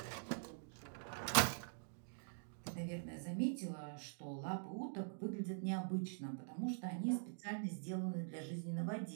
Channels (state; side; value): silent; left; digital silence